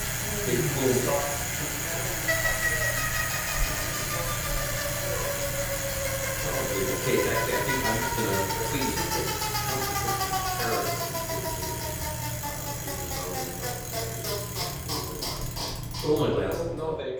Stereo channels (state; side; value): identical; both; correlation 1.00